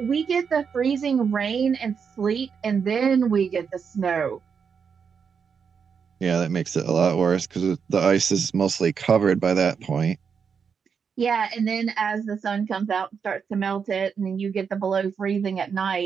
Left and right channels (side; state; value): left; quieter; 6.4 dB